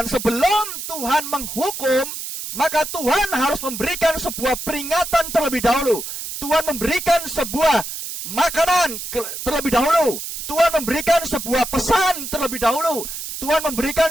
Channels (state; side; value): noise; right; hiss, 7 dB below the sound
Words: sebelum Tuhan menghukum, maka Tuhan harus memberikan sebuah peringatan terlebih dahulu. Tuhan memberikan sebuah makanan terlebih dahulu. Tuhan memberikan sebuah pesan terlebih dahulu. Tuhan memberikan